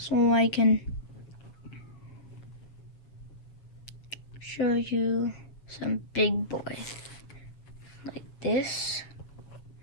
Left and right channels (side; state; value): right; late; 7.4 ms